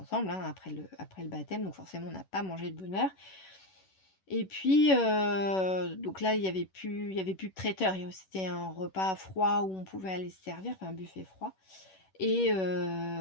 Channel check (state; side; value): late; right; 11 ms